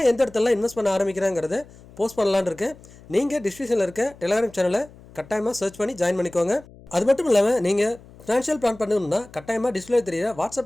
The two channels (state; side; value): noise; left; hum, 22 dB below the sound